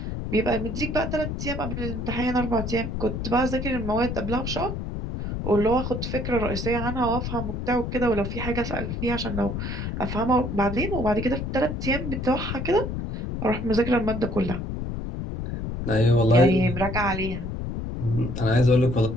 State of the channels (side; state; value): left; noise; rumble, 4 dB below the sound